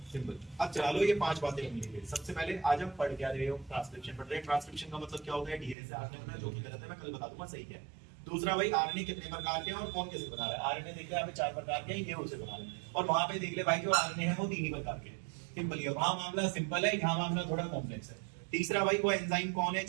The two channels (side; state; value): left; drops out; at 5.8 s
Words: सिंपल। अब चलो ये 5 बातें हम लेंगे। सबसे पहले आज हम पढ़ क्या रहे हो? ट्रांसक्रिप्शन पढ़ रहे हैं। ट्रांसक्रिप्शन का मतलब क्या होता है? डीएनए से आरएनए बनना, जो कि गलत है मैं कल बता दूंगा सही क्या है। दूसरा भाई आरएनए कितने प्रकार के हैं और कौन कैसे बना रहा है? आरएनए देख ले यहाँ पे 4 प्रकार के हैं, ये उसे बना रहे हैं, और वहां पे देख ले भाई जो आरएनए है वो 3 ही प्रकार के हैं। सिंपल है, वहां मामला सिंपल है, यहाँ मामला थोड़ा कॉम्प्लेक्स है। तीसरा भाई वो एंजाइम कौन है